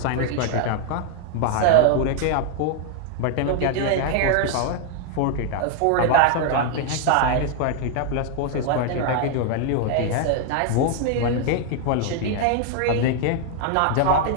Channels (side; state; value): both; different; correlation 0.00